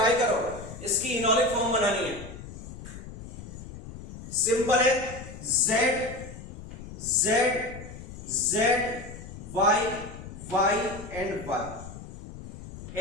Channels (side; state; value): left; noise; rumble, 13 dB below the sound